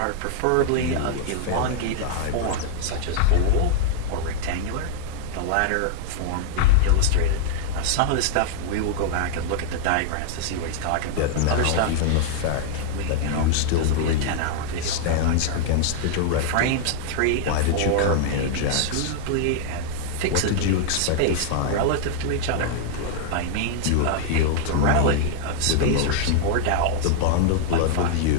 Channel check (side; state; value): both; different; correlation -0.01